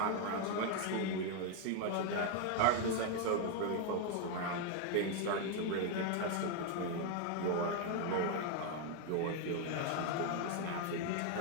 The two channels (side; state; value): both; different; correlation 0.01